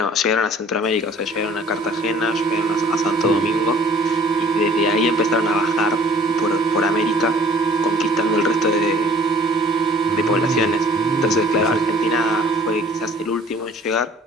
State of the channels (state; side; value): normal; both; correlation 0.53